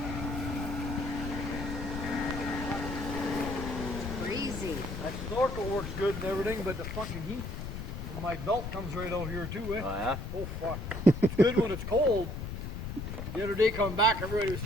Crazy. that snorkel works good and everything, but the fucking heat from my belt comes right out here too, eh? Oh yeah? Oh fuck. It's good when it's cold. The other day coming back, everybody was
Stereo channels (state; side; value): noise; left; rumble, 6 dB below the sound